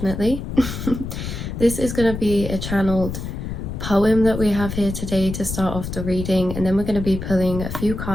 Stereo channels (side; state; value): left; noise; rumble, 6 dB below the sound